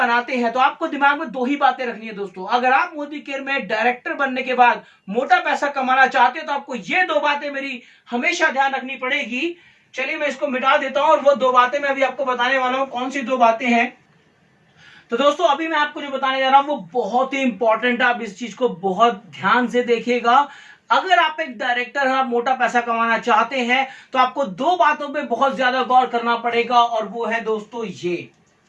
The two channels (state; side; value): identical; both; correlation 1.00